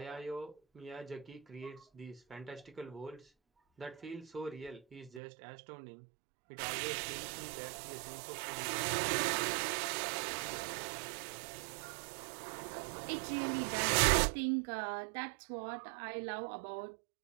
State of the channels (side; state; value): left; drops out; at 5.2 s